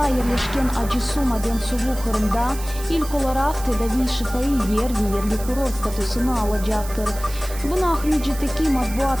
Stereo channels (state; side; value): noise; right; hiss, 14 dB below the sound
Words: жерлешкен Ажысуу Маден суу Кырымда илк оларак тедави шифаи ерлик курорт статусуну алажактыр. Буну Ахмеджитеки матбуат